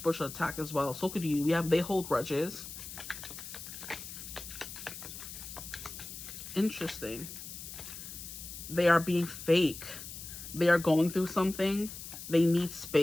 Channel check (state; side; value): noise; left; hiss, 11 dB below the sound